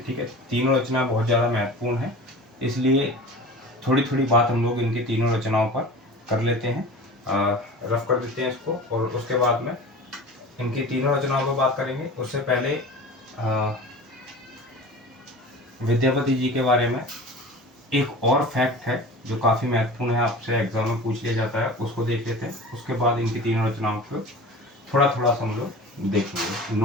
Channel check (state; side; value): normal; both; correlation 0.37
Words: ठीक है। तीनों रचना बहुत ज़्यादा महत्वपूर्ण है, इसलिए थोड़ी थोड़ी बात हम लोग इनकी तीनों रचनाओं पर कर लेते हैं, रफ कर देते हैं इसको, और उसके बाद में इनकी तीनों रचनाओं पर बात करेंगे। उससे पहले विद्यापति जी के बारे में एक और फैक्ट है जो काफ़ी महत्वपूर्ण है, आपसे एग्जाम में पूछ लिया जाता है, उसको देख लेते हैं। उसके बाद इनकी तीनों रचनाओं को थोड़ा थोड़ा हम लोग देखेंगे।